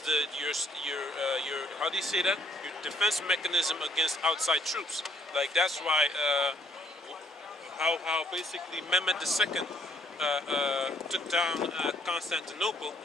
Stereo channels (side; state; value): both; normal; correlation 0.66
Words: your how do you say that? Your defense mechanism against outside troops. Like that's why how basically Mehmed II took down Constantinople